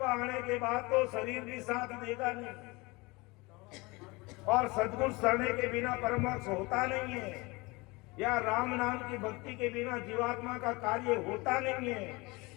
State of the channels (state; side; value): quieter; right; 24.5 dB